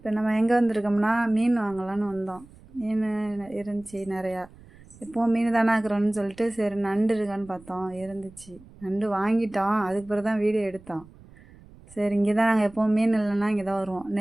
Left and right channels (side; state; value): right; noise; rumble, 23 dB below the sound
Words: நம்ம எங்கே வந்திருக்கோம்னா மீன் வாங்கலான்னு வந்தோம். மீன் இருந்துச்சு நிறையா. இப்போது மீன் தானே ஆக்குறோன்னு சொல்லிட்டு சரி நண்டு இருக்கான்னு பார்த்தோம், இருந்துச்சு. நண்டு வாங்கிட்டோம், அதுக்கு பிறகு தான் வீடியோ எடுத்தோம். சரி இங்கே தான் நாங்கள் எப்போவும் மீன் இல்லைன்னா இங்கே தான் வருவோம்.